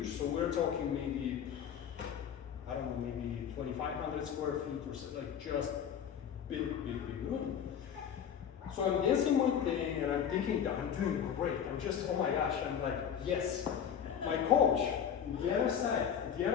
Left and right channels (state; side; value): quieter; right; 8.4 dB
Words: So we're talking maybe, I don't know, maybe 2,500 square feet or so, like just big room. So I'm dancing my thing and I'm thinking that I'm doing great. I'm just, oh my gosh, I'm like, yes. My coach, the other